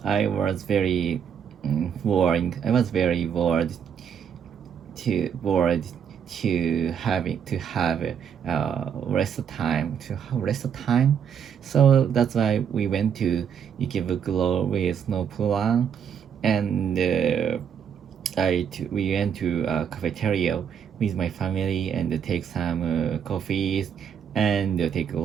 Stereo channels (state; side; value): quieter; left; 7.9 dB